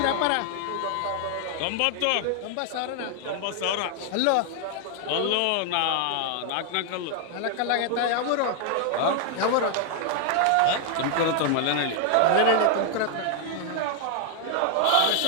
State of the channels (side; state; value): both; different; correlation 0.00